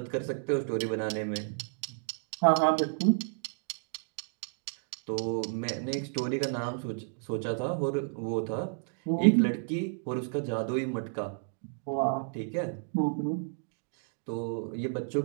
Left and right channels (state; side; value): silent; left; digital silence